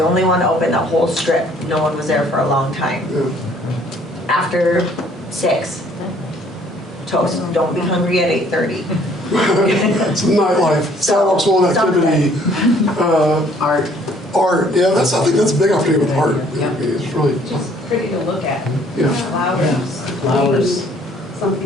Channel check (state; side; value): normal; both; correlation 0.60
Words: only one to open the whole strip. No one was there for a long time. Yeah. After 6, toast. Don't be hungry at 8:30. It's nightlife, sidewalks full of activity. Art, yeah, I think that's a big opportunity with art. Yeah. It's really, Just pretty to look at. yeah, Flowers.